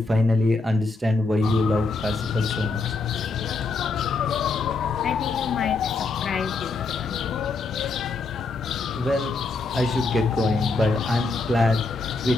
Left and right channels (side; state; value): right; quieter; 3.7 dB